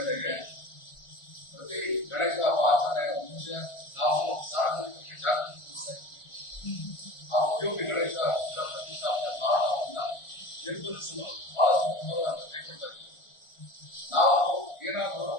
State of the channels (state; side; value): late; right; 1.4 ms